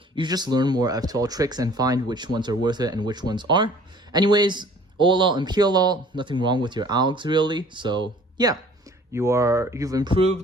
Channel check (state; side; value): normal; both; correlation 0.52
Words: You just learn more F12 tricks and find which ones are worth it and which ones aren't. Anyways, OLL and PLL, nothing wrong with your algs really. So yeah, you've